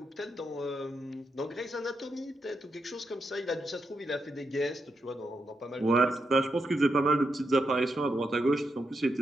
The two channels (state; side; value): normal; both; correlation 0.83